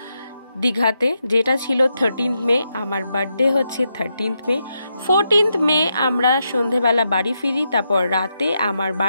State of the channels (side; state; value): both; inverted; correlation -0.84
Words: দীঘাতে, যেটা ছিল 13th মে। আমার বার্থডে হচ্ছে 13th মে। 14th মে আমরা সন্ধেবেলা বাড়ি ফিরি, তারপর রাতে আমার